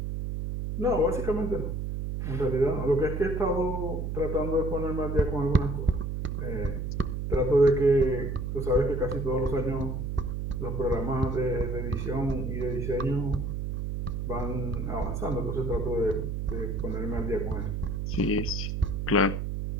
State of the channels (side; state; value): right; noise; hum, 3 dB below the sound